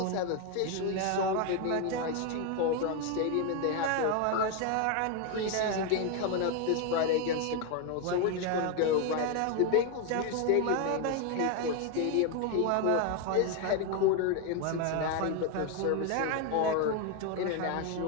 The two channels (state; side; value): different; both; correlation 0.01